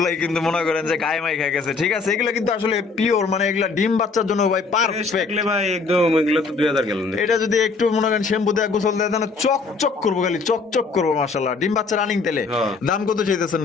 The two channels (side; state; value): right; quieter; 4.4 dB